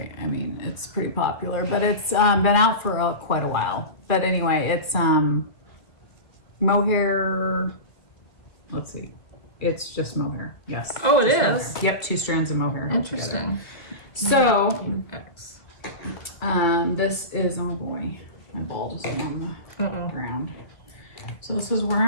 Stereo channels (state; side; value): late; right; 1.9 ms